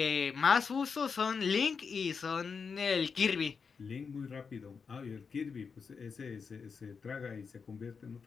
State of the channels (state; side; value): quieter; right; 5.6 dB